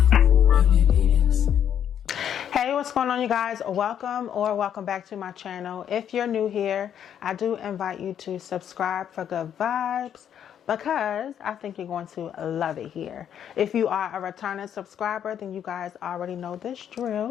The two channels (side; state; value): right; quieter; 9.3 dB